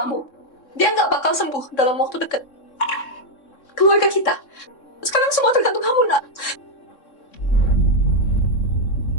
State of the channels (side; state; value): right; late; 3.6 ms